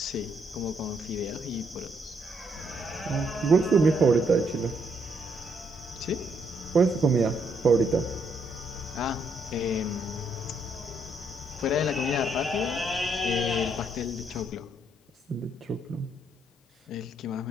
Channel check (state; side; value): normal; both; correlation 0.73